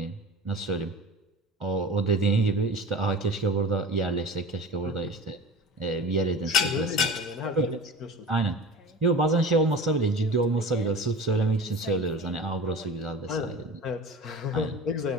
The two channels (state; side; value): normal; both; correlation 0.35